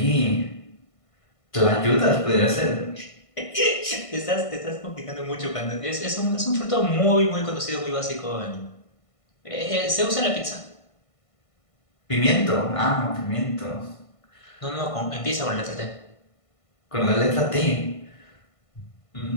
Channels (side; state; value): right; late; 1.5 ms